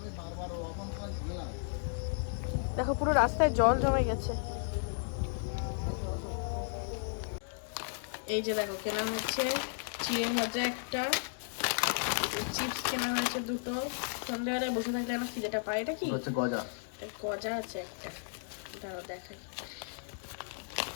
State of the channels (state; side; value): silent; right; digital silence